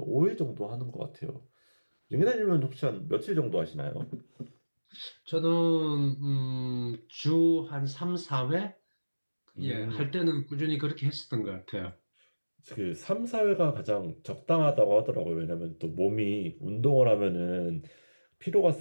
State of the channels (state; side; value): inverted; both; correlation -1.00